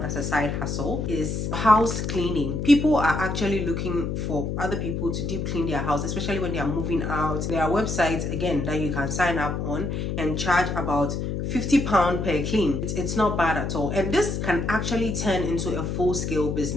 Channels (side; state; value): left; noise; hum, 2 dB below the sound